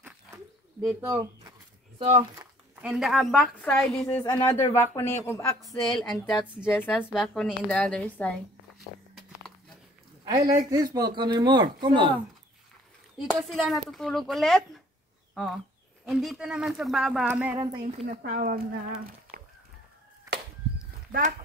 So, and the back side, this is another balcony of Axel, and that's Jessa's balcony in the other side. I like this balcony more. Come on. Dito sila natutulog ulit. Oh. And dito naman sa baba, meron tayong tinatawag na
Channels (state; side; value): normal; both; correlation 0.57